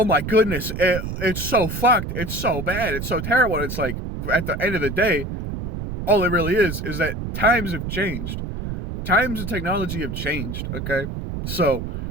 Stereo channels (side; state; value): right; noise; rumble, 5 dB below the sound